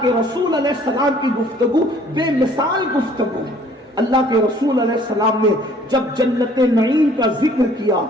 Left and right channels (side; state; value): both; normal; correlation 0.56